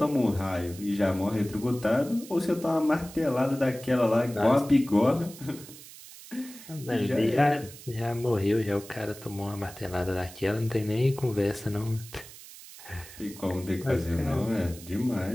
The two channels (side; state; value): right; noise; hiss, 17 dB below the sound